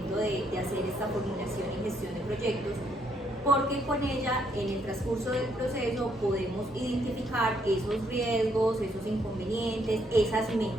de hacer esta formulación y gestión de proyectos, porque con ella en el transcurso del proceso podemos identificar esos riesgos, esos inconvenientes, esas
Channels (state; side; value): normal; both; correlation 0.72